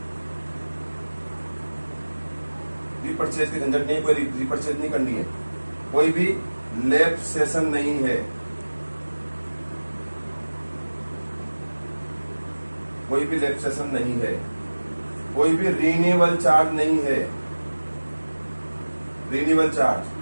रीपरचेज की झंझट नहीं है, कोई रीपरचेज नहीं करनी है, कोई भी लैब सेशन नहीं है, कोई भी लैब सेशन नहीं है, कोई भी रिन्यूअल चार्ज नहीं है, रिन्यूअल चार्ज,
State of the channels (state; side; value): inverted; both; correlation -1.00